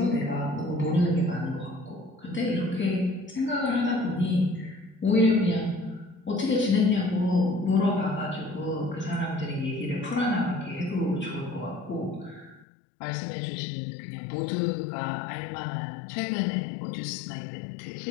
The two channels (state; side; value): drops out; right; at 12.7 s